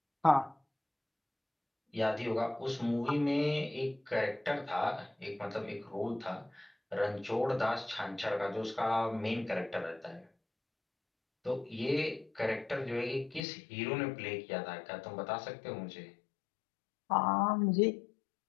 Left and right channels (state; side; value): drops out; right; at 13.4 s